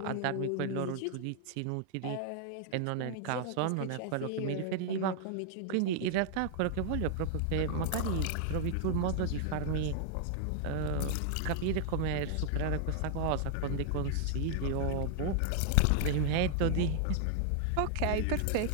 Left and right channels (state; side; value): different; both; correlation 0.00